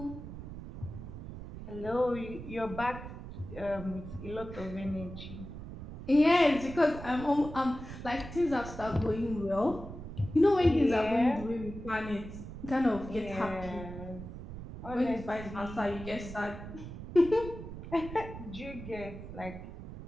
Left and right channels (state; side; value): noise; right; rumble, 11 dB below the sound